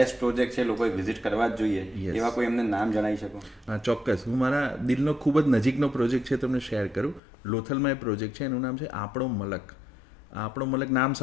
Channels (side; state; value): right; drops out; at 7.2 s